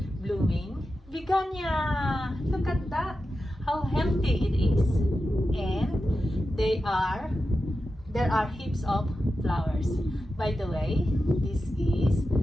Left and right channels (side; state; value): both; normal; correlation 0.91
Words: blooming begonia. Look at that! How healthy it is. And there are heaps of flowers. By the way, this is